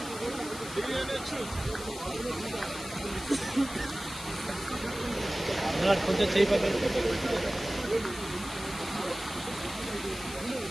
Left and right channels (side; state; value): left; noise; hiss, 12 dB below the sound